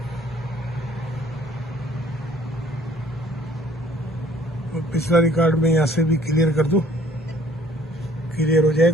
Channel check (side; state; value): both; normal; correlation 0.57